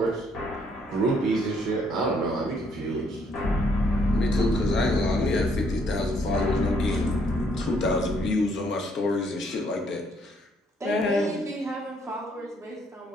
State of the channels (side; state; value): both; normal; correlation 0.68